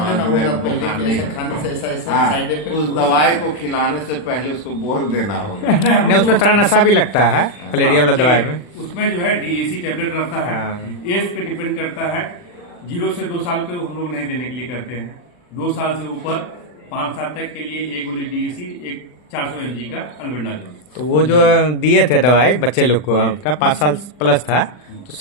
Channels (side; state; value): right; late; 40 ms